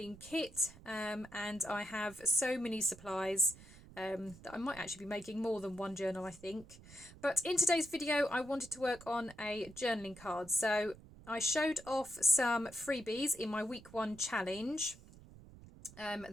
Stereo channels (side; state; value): right; noise; rumble, 20 dB below the sound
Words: kit and I have so many supplies that I might actually be making more than one journal, I think. But in today's video, I wanted to work on a journaling card. So I showed off some freebies in my week 1 challenge.